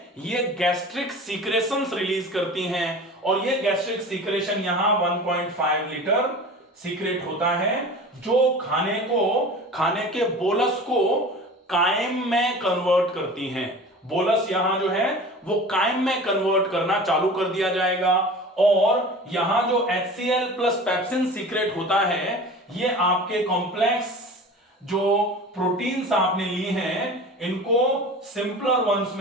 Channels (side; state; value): both; normal; correlation 0.37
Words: ये गैस्ट्रिक सीक्रेशंस रिलीज करती हैं और ये गैस्ट्रिक सीक्रेशन यहां 1.5 लीटर सीक्रेट होता है जो खाने के बोलस को कायम में कन्वर्ट करती हैं। बोलस यहां जो है वो कायम में कन्वर्ट करना चालू कर दिया जाएगा और यहां जो HCl प्लस पेप्सिन सीक्रेट होता है ये आपके कॉम्प्लेक्स जो प्रोटीन्स आपने ली हैं इनको सिंपलर वंस